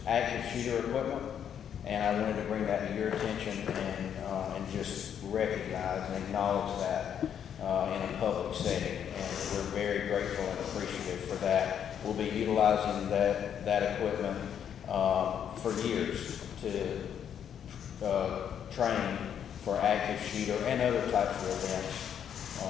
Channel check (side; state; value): right; quieter; 8.8 dB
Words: active shooter equipment. And I wanted to bring that to your attention and just recognize and acknowledge that in a public setting. And we're very grateful and appreciative for that. We'll be utilizing that equipment for years to train for active shooter and other types of events